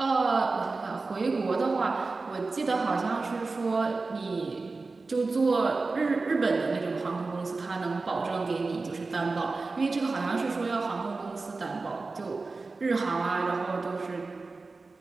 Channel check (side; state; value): left; quieter; 3.8 dB